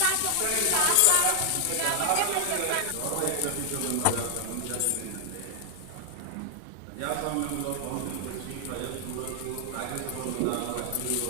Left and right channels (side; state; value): both; different; correlation 0.00